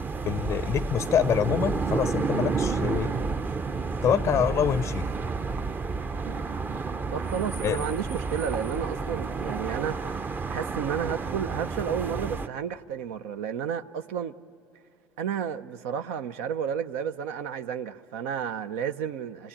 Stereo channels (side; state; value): both; normal; correlation 0.51